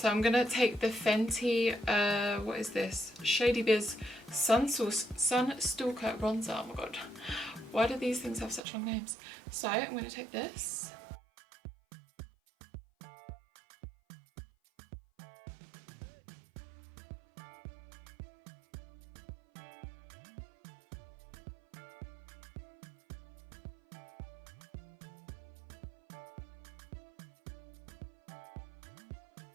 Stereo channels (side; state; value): left; drops out; at 8.6 s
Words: I'm going to take the Fenty, what is this? Shady Biz Sunstalker bronzer. Oh my god, why do these things have such long names? So I'm going to take this.